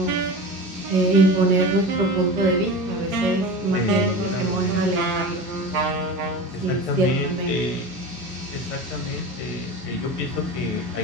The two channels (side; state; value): both; normal; correlation 0.31